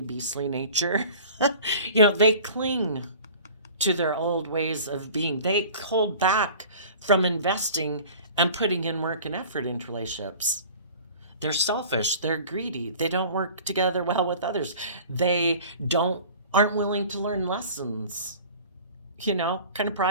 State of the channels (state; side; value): inverted; both; correlation -0.43